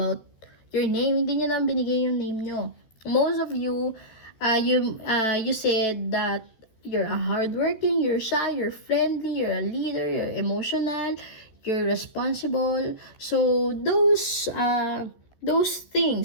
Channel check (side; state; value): right; late; 14 ms